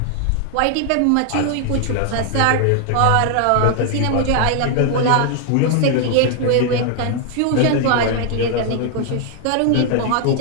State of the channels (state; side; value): different; both; correlation 0.00